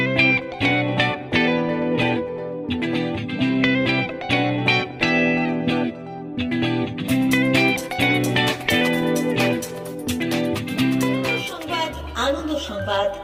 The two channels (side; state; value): both; identical; correlation 1.00